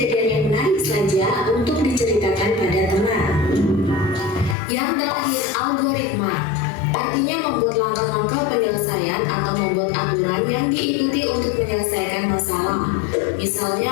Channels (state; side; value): drops out; right; at 4.5 s